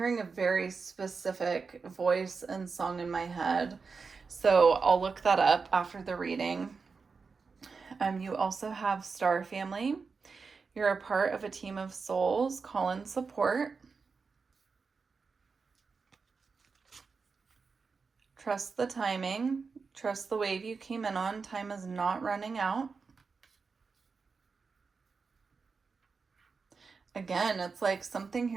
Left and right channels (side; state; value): left; quieter; 4.9 dB